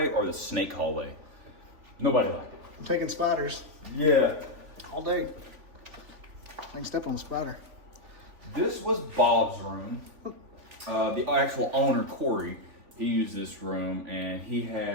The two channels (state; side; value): late; left; 3.5 ms